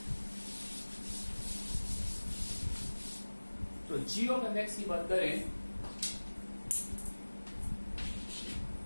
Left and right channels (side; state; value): both; inverted; correlation -1.00